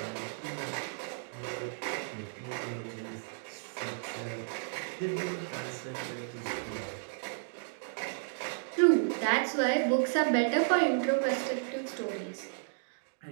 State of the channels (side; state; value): left; silent; digital silence